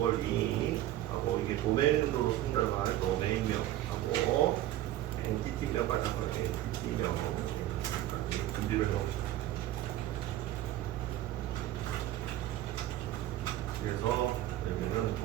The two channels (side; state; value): left; quieter; 13.9 dB